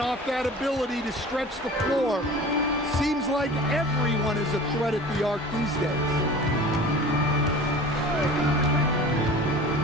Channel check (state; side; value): normal; both; correlation 0.40